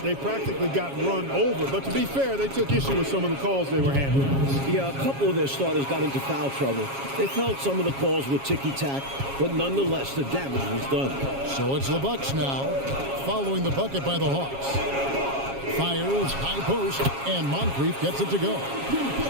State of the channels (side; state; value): left; late; 7.3 ms